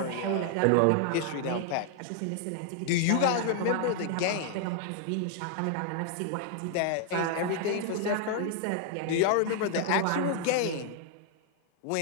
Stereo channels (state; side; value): different; both; correlation 0.00